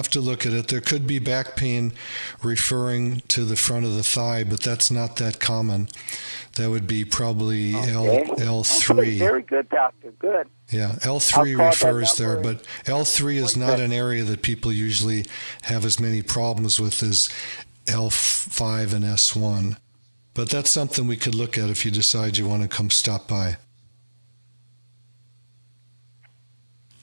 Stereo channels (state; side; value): inverted; both; correlation -1.00